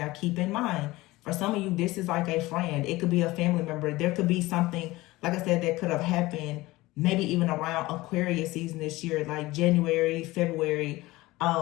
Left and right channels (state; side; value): quieter; right; 19.5 dB